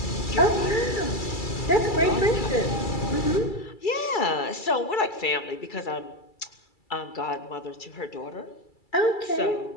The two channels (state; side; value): late; right; 2.3 ms